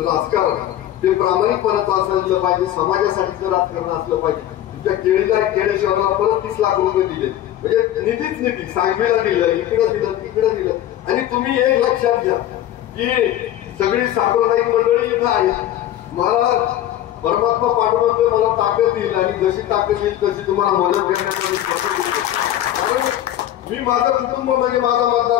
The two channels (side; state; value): right; quieter; 12.4 dB